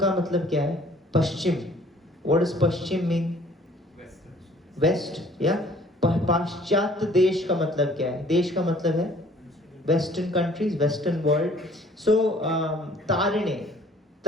मतलब क्या है? पश्चिम. व्हाट इज पश्चिम मीन? वेस्ट. या पाश्चात्य देश का मतलब क्या है? देश का मतलब है वेस्टर्न कंट्रीज, वेस्टर्न वर्ल्ड. सो तारिणे,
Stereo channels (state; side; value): normal; both; correlation 0.55